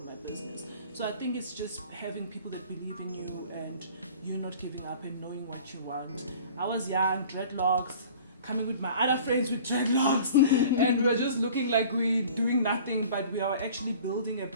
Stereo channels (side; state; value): both; inverted; correlation -0.46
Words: business. So I think it's just having people that believe in you and you not giving up and knowing what you want. I was young, dreadlocks, coming with my other friends with dreadlocks, and we were just looking like we doing nothing, but we are actually building a